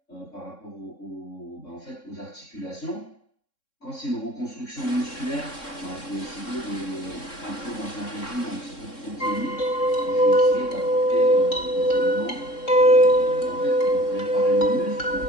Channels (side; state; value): right; late; 3.6 ms